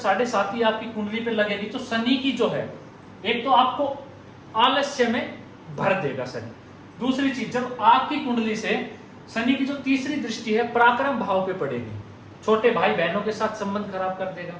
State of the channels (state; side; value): identical; both; correlation 1.00